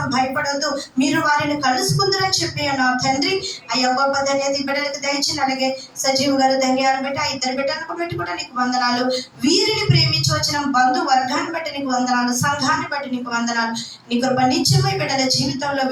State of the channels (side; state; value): both; identical; correlation 1.00